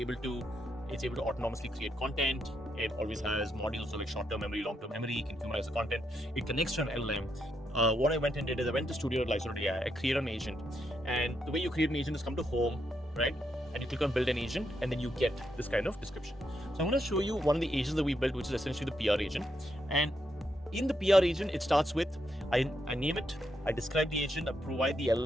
it's able to autonomously create content. It always has modules, so like short-term memory, long-term memory. You can humanize the content. It connects to an LLM. What I went and did is I went to Studio and Lyzr AI. I created an agent. And the way you create an agent is come to home, right? And you click on build an agent, and then you get this kind of description. So I'm going to show you one of the agents that we built, which is essentially the PR agent. And in the PR agent, it starts with, I name it, I describe the agent, I provide the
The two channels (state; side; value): normal; both; correlation 0.80